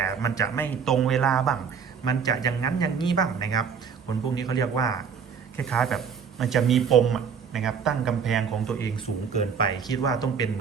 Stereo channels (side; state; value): left; quieter; 6.7 dB